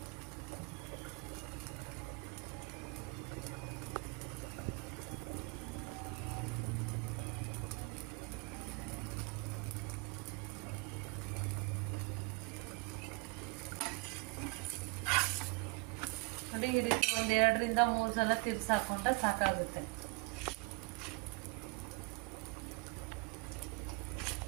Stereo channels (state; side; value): quieter; left; 27.1 dB